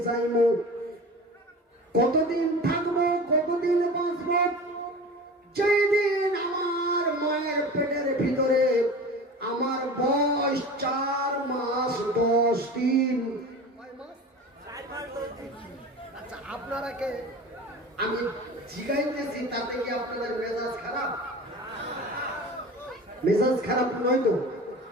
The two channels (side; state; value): both; normal; correlation 0.35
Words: যাইবো, কতদিন থাকবো, কতদিন বাঁচবো। যেই দিন আমার মায়ের পেটের ভিতরে আমার বয়স 4 মাস 10 দিন। আচ্ছা, আপনারা কে আমি জিগাইতেছি তাতে কি আপনাদের মেজাজ খারাপ? মেজাজ খারাপ নয় তো?